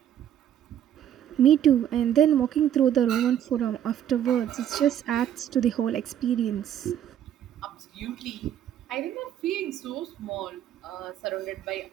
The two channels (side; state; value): left; quieter; 10.4 dB